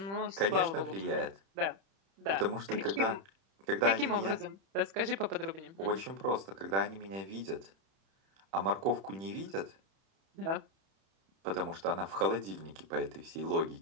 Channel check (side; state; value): left; late; 31 ms